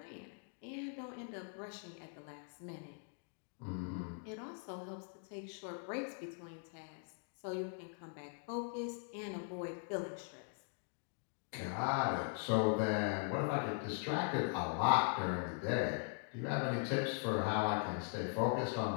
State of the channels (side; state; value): right; silent; 50 dB below the other